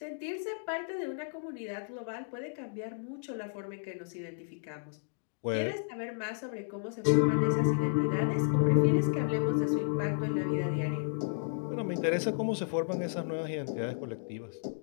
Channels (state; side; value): silent; right; digital silence